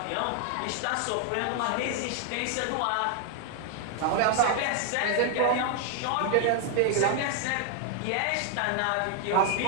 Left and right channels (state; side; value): different; both; correlation 0.00